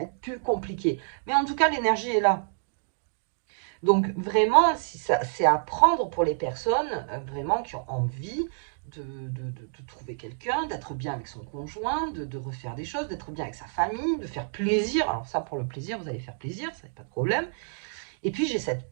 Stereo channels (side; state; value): left; silent; digital silence